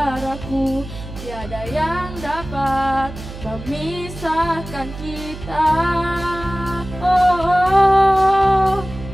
tiada yang dapat memisahkan kita. Oh,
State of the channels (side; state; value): right; noise; hum, 12 dB below the sound